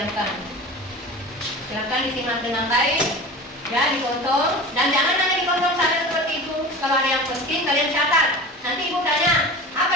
Silakan disimak dengan baik, ya, ditonton, dan jangan hanya ditonton saja seperti itu. Kalau ada yang penting kalian catat. Nanti Ibu tanya apa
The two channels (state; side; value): normal; both; correlation 0.34